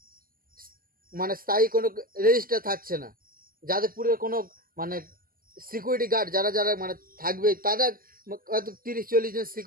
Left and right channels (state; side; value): late; left; 0.42 ms